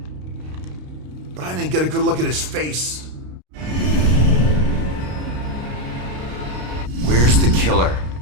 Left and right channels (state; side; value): late; left; 33 ms